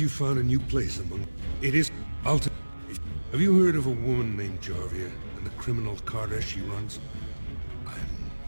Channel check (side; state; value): both; inverted; correlation -1.00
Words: found a new place among... It is... Have you heard of a woman named Jarvia and the criminal carter she runs?